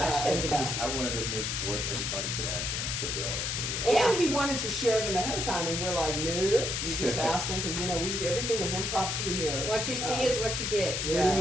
questions. and- I wanted to make where everybody can answer and put their own opinion on And it. he wanted to share them ahead of time, and we're like, no, you just ask them because everything is impromptu here. What you see is what you get. They Yeah. didn't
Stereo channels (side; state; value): left; noise; hiss, 1 dB below the sound